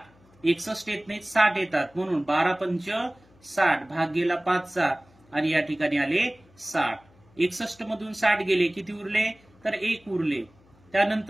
61 येत नाहीत 60 येतात म्हणून 12 पंच 60 भाग गेला 5चा आणि या ठिकाणी आले 60. 61 मधून 60 गेले किती उरले तर 1 उरले.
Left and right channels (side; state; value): left; noise; hum, 29 dB below the sound